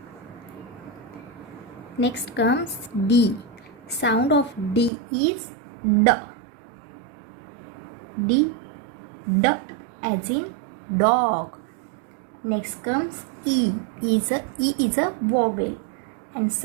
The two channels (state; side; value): drops out; left; at 4.9 s